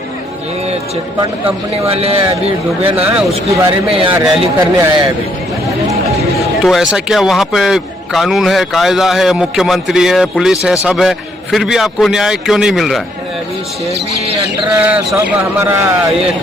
ये चिटफंड कंपनी वाले अभी डूबे ना, उसके बारे में यहाँ रैली करने आए हैं अभी। तो ऐसा क्या वहाँ पे कानून है, कायदा है, मुख्यमंत्री है, पुलिस है, सब है, फिर भी आपको न्याय क्यों नहीं मिल रहा है? अभी सेबी अंडर सब हमारा ये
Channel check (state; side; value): normal; both; correlation 0.70